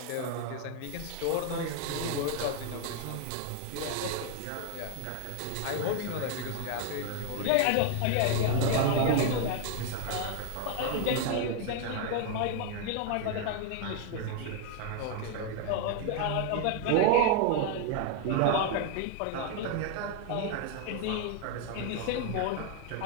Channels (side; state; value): both; different; correlation 0.00